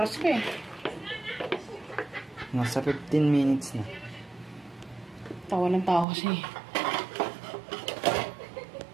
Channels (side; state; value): left; drops out; at 6.1 s